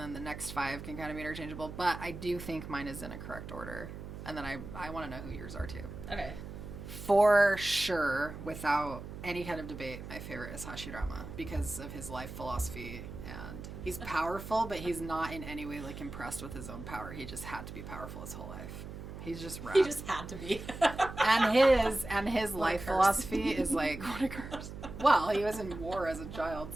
the next 5 can kind of be interchangeable. But I do think mine is in a correct order. And then I want to know who yours are, too. Okay. For sure, without any kind of debate, my favorite is Hashirama because of his life philosophy. And he's powerful, but he's not in any way like impressed with his own power. He just had to be powerful his whole life. He's just rad. He just had to be. and his life philosophy is like, what a curse. Well, he was in war as a child,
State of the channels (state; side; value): noise; right; hum, 10 dB below the sound